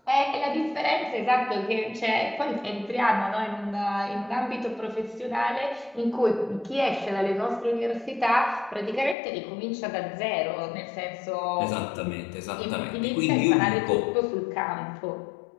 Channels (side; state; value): right; drops out; at 9.2 s